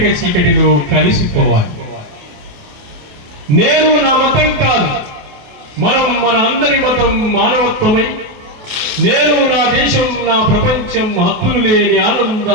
చీకటిలో కలిసిపోవాలి. నేను నా మతం కాదు, మనం మన అందరి మతం మానవత్వమై, నేను నా దేశం నా ప్రపంచం హద్దులు లేని ఆనంద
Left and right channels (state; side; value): late; left; 28 ms